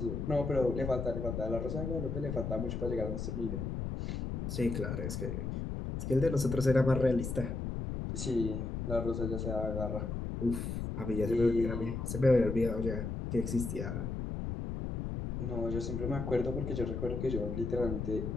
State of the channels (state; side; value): noise; left; rumble, 3 dB below the sound